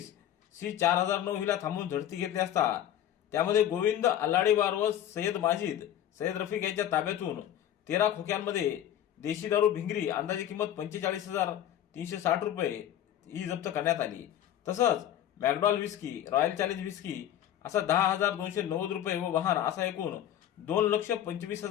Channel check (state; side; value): quieter; right; 11.2 dB